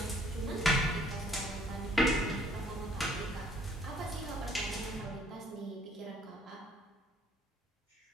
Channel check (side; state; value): both; normal; correlation 0.61